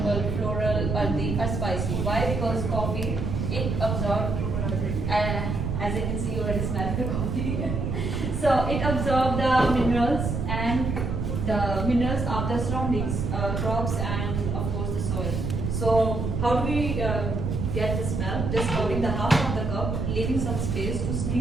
floral, earthy, or spicy. Why? Because coffee, it absorbs, as you can see, you already smell the coffee. So it absorbs the minerals and the minerals of the surroundings, crops and of course the soil. So how do we get the smell? Just holding the half of the cup, leaving some space to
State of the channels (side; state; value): right; noise; rumble, 1 dB below the sound